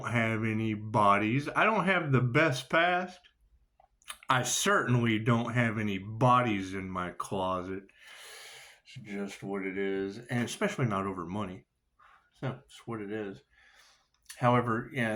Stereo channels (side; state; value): both; identical; correlation 1.00